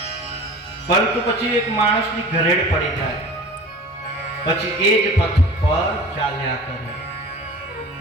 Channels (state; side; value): normal; both; correlation 0.40